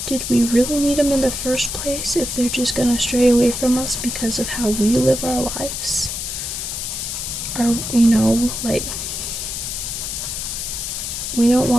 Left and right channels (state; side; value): noise; left; hiss, 4 dB below the sound